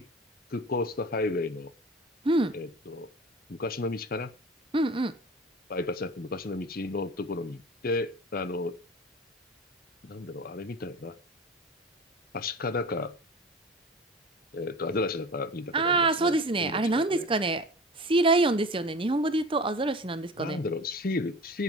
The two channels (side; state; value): both; normal; correlation 0.36